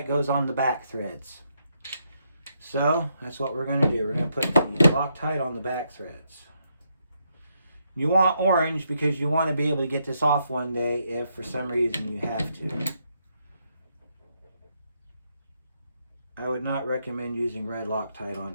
goes on the back threads. So that's what we're going to do. We're going to put the Loctite on the back threads. You want orange because you want to be able to get this off one day if for some reason you have to. I would not recommend using red Loctite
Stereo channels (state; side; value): inverted; both; correlation -0.78